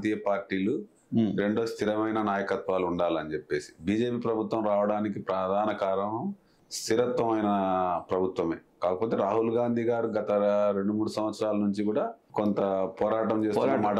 పార్టీలు, రెండో స్థిరమైన నాయకత్వాలు ఉండాలని చెప్పేసి బీజేపీ ప్రభుత్వం రావడానికి ప్రధాన కారణం స్థిరత్వమైన ప్రభుత్వమే. కాకపోతే రాహుల్ గాంధీ గారు గత 2-3 సంవత్సరాల నుంచి కూడా కొంత పోరాటం చేస్తున్న మాట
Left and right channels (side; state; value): both; identical; correlation 1.00